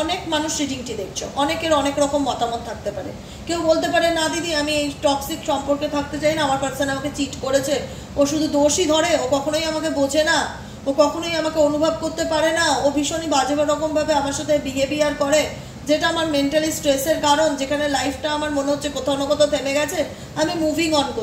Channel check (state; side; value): identical; both; correlation 1.00